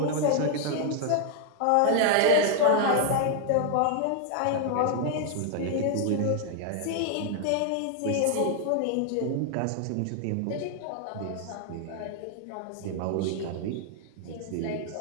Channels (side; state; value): both; different; correlation 0.00